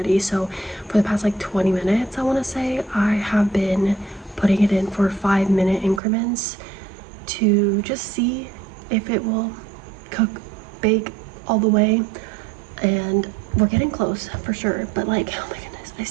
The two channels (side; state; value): left; drops out; at 6.0 s